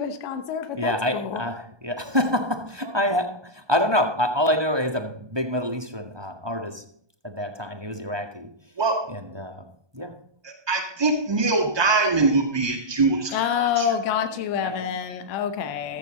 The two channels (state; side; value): late; left; 1.2 ms